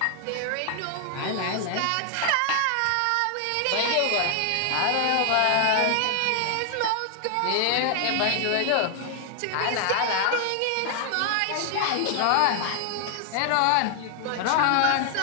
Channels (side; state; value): both; different; correlation 0.00